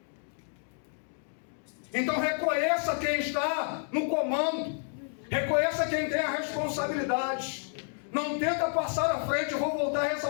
Então reconheça quem está no comando. Reconheça quem tem a responsabilidade. Não tenta passar à frente. Eu vou voltar a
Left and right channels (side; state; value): right; silent; 58 dB below the other